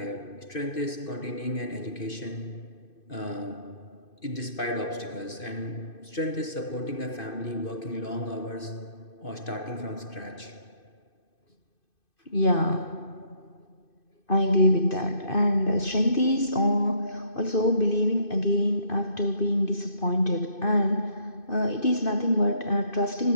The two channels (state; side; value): late; right; 2.5 ms